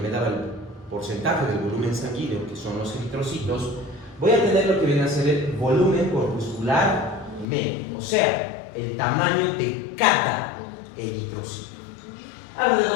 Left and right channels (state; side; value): drops out; right; at 7.5 s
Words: me daba el porcentaje del volumen sanguíneo, que son los eritrocitos, voy a tener lo que viene a ser el volumen corpuscular medio, o sea, el tamaño de cada eritrocito.